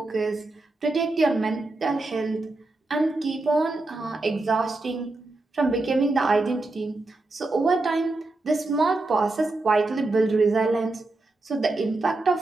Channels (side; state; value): left; quieter; 3.1 dB